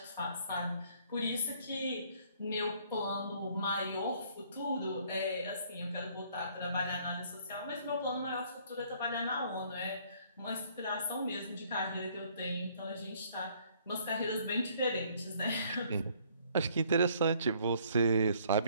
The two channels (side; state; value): both; inverted; correlation -0.62